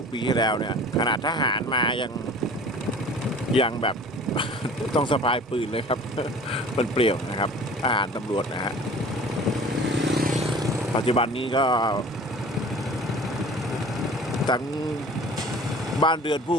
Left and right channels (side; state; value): both; normal; correlation 0.44